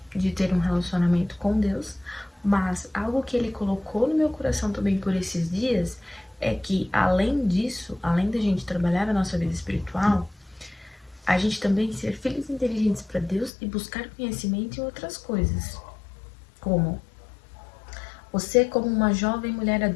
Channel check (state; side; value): drops out; right; at 13.5 s